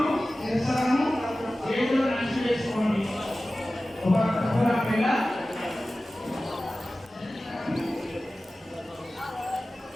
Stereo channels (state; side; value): normal; both; correlation 0.96